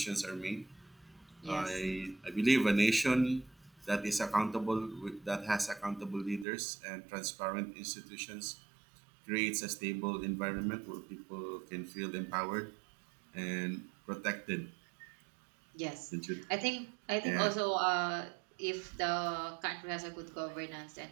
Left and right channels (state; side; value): drops out; left; at 6.5 s